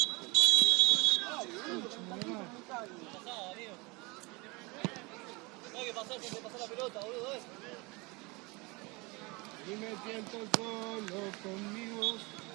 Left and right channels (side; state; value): left; quieter; 26.3 dB